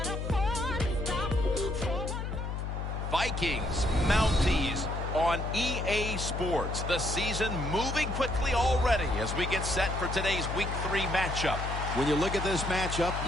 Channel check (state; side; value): noise; left; hum, 4 dB below the sound